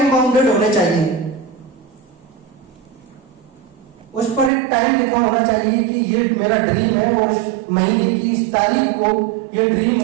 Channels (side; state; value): left; drops out; at 4.5 s